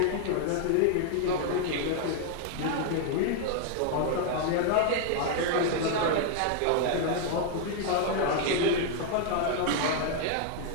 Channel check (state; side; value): different; both; correlation 0.00